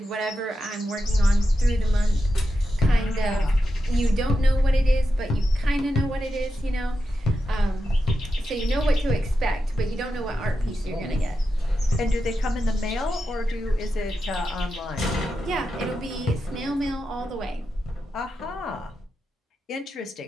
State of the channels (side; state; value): both; normal; correlation 0.89